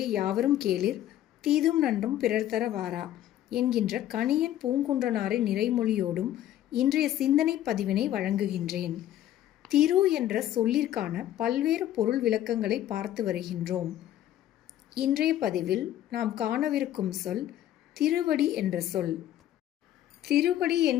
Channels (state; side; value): quieter; right; 12.4 dB